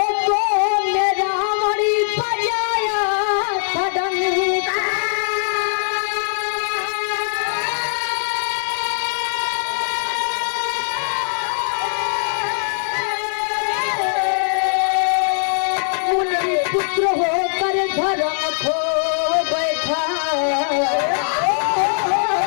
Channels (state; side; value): silent; right; 65 dB below the other